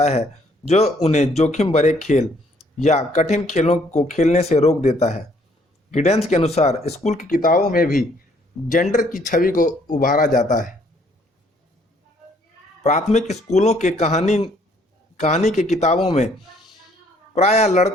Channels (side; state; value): both; normal; correlation 0.64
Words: है जो उन्हें जोखिम भरे खेल या कठिन खेलों को खेलने से रोक देता है। गिडेंस के अनुसार स्कूल की किताबों में भी जेंडर की छवि को उभारा जाता है। प्राथमिक स्कूलों के कहानी के किताबों में प्रायः